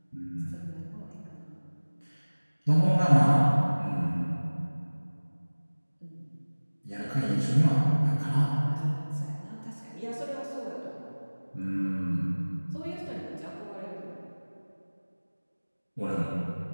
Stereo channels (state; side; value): inverted; both; correlation -1.00